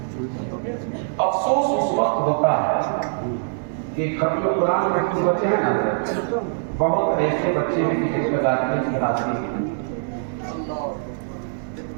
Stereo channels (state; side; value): silent; left; digital silence